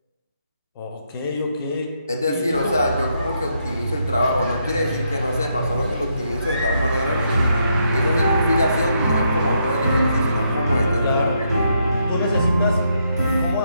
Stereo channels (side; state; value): both; inverted; correlation -0.77